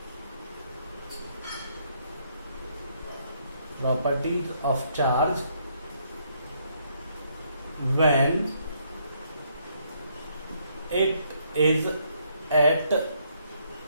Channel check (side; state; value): both; inverted; correlation -0.71